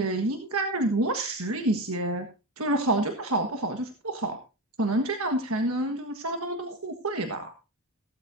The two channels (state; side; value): normal; both; correlation 0.18